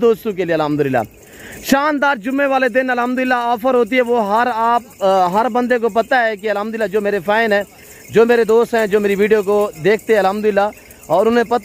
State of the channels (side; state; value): both; identical; correlation 1.00